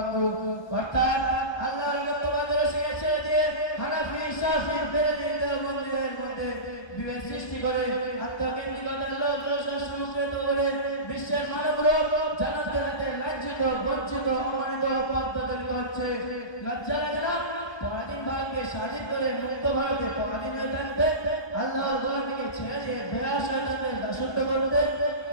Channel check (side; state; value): right; late; 1.2 ms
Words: অর্থাৎ আল্লাহর রহমত তোমাদের শিখেছে যে হানাফি শাফি বেরেলভীদের মন্দিরের মধ্যে বিভেদ সৃষ্টি করে আত্মকেন্দ্রিকতার লোক সংস্কৃত করে বিশ্বের মানবরূপ জানাতে রাতে লাঞ্ছিত বঞ্চিত অমানিত পদ্ধতি হচ্ছে। লজ্জা লাগে না? পরাধীন ভারতকে স্বাধীন করে মুক্ত ভারতে পরাধীন হয়ে থাকতে, আল্লাহর গোলামীকে ছেড়ে দিয়ে বেড়া শয়তানদের দাসত্ব করতে,